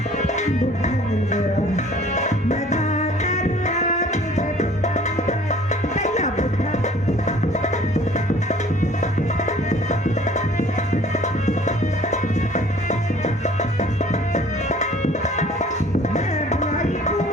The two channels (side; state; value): both; normal; correlation 0.52